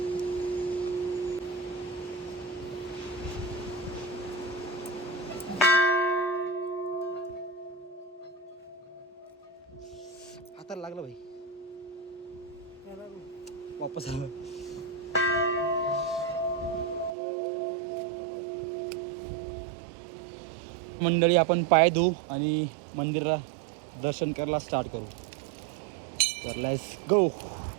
हाताला लागला भाई, वापस आलो. मंडळी, आपण पाय धुवू आणि मंदिराला दर्शन करायला स्टार्ट करू. तर लेट्स गो.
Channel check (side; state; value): left; drops out; at 17.2 s